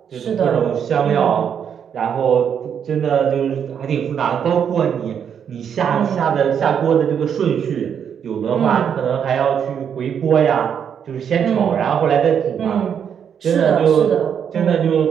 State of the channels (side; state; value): left; quieter; 8.0 dB